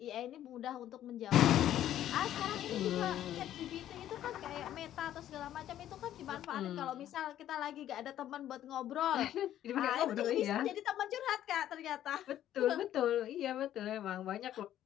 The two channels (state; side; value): quieter; right; 11.9 dB